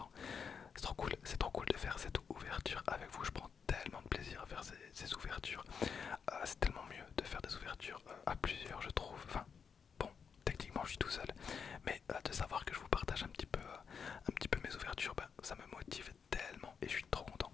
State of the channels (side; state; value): right; quieter; 6.4 dB